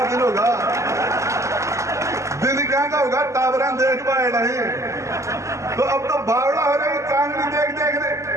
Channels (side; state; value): left; late; 0.14 ms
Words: दिन होगा, दिन क्या का होगा टावरा देख पाए नहीं। तो अब तो बावड़ा हो रही चांदनी देख देख रहे,